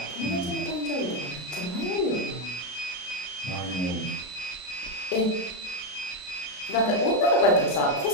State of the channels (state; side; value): late; right; 33 ms